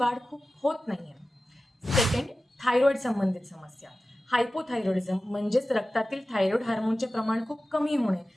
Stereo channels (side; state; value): both; normal; correlation 0.95